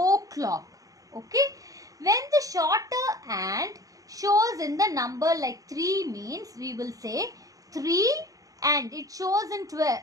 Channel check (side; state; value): left; late; 0.17 ms